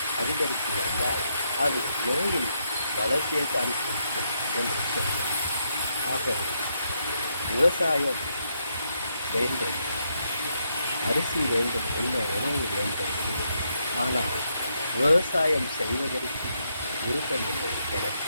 அதிகரித்து வந்தால் அது நோயின் வளர்ச்சியை தான் குறிக்கும் என்று சொல்வேன். ஆகவே விவசாயம் வேண்டும், அரிசி வேண்டும், உண்ண உணவு வேண்டும். ஆனால் விவசாயம் செய்வதற்கு விருப்பமில்லை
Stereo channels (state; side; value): inverted; both; correlation -0.79